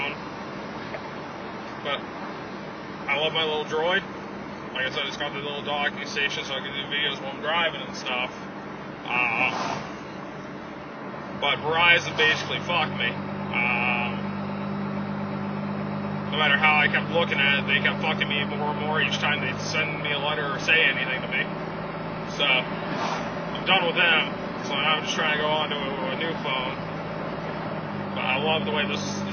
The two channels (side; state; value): both; identical; correlation 1.00